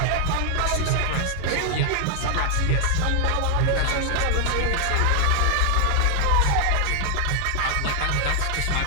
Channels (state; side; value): different; both; correlation 0.00